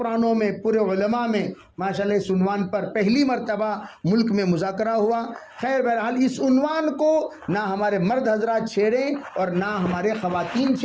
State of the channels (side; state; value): both; identical; correlation 1.00